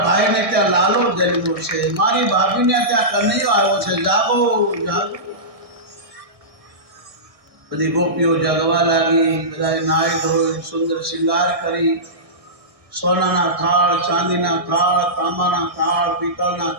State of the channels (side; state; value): left; late; 1.6 ms